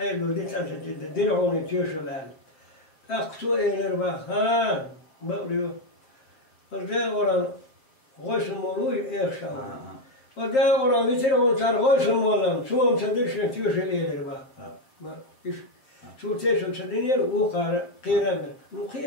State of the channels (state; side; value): late; right; 7.7 ms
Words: دي تاسة دينعوني تيوشل هال أقصو إيلر بقى ها بقريو وده ورا غوش المولوي إيخشا وده ورا بيترعون صار غوش المولم سوهم تدرشن تيوشل إيلر بقى إيش شو تيشل تدينير وقار قيران مو